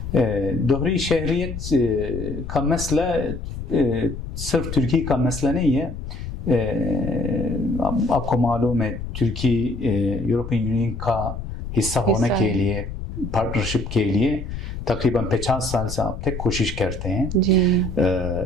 دوہری شہریت کا مسئلہ صرف ترکی کا مسئلہ نہیں ہے. آپ کو معلوم ہے ترکی یورپین یونین کا حصہ ہونے کے لیے، پارٹنرشپ کے لیے تقریباً 50 سال سے اب تک کوشش کرتے ہیں.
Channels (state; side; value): noise; left; rumble, 8 dB below the sound